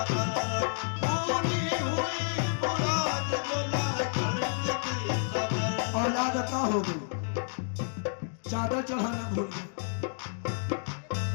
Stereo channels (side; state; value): right; silent; digital silence